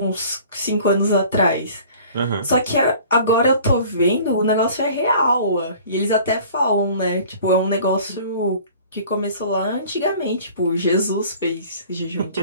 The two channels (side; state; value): both; inverted; correlation -0.48